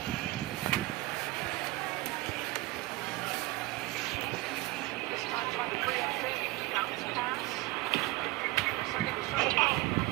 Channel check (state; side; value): quieter; left; 20.2 dB